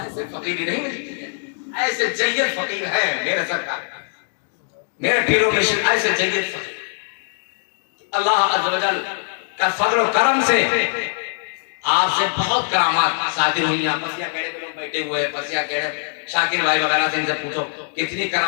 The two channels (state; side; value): silent; right; digital silence